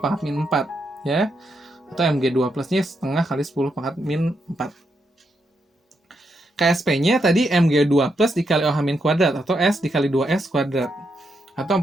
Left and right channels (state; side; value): normal; both; correlation 0.81